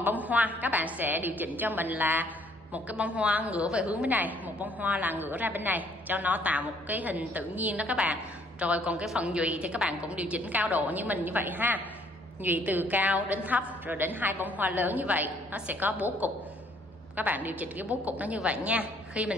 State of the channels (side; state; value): both; normal; correlation 0.63